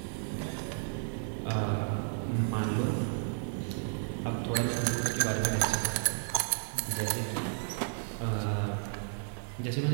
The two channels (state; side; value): silent; left; digital silence